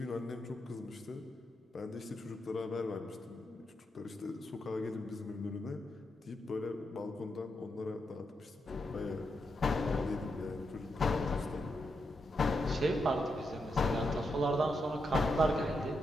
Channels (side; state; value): both; normal; correlation 0.83